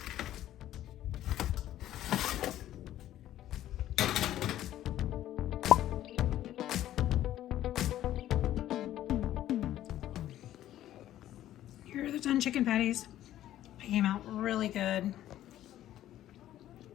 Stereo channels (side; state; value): right; quieter; 12.9 dB